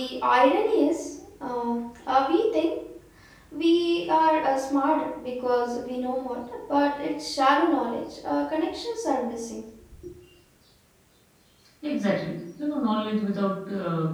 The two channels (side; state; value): both; identical; correlation 1.00